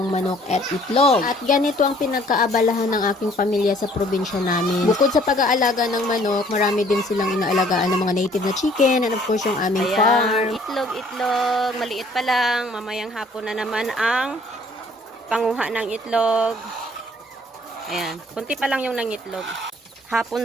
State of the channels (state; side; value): normal; both; correlation 0.59